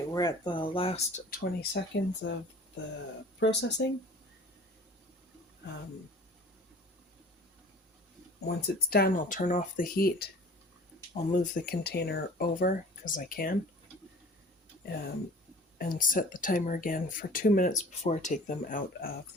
we're at the last 20 seconds of the processing. Once it's done, I'll turn off the heat. I'll move the container over because I can, and set the timer again for 2 minutes before I take them out of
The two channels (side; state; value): both; normal; correlation 0.45